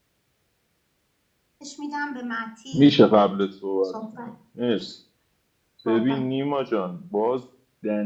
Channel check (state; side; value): identical; both; correlation 1.00